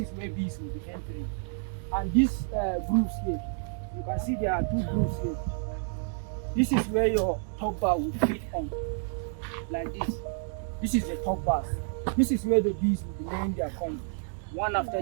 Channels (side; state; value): left; silent; 58 dB below the other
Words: where bees will be entering. And these grooves here, you can see there are two grooves here. This is where your top bar will fit on, like this. This is the top bars. This is where the bees will be laying their comb, one after